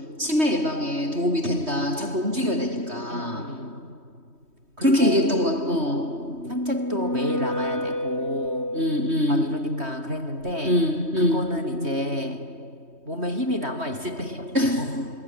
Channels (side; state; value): left; late; 3.2 ms